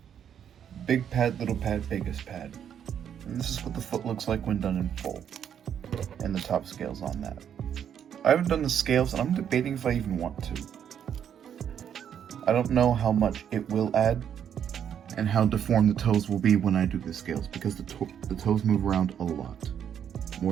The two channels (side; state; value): left; quieter; 8.9 dB